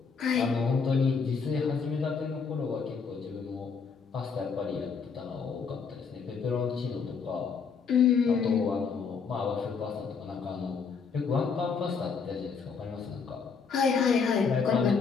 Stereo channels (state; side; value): quieter; right; 5.6 dB